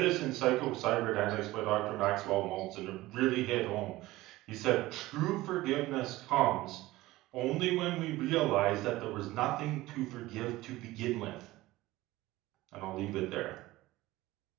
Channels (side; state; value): left; quieter; 18.0 dB